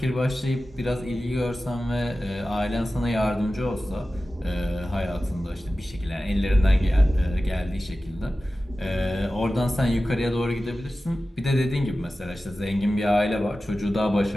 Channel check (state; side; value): normal; both; correlation 0.95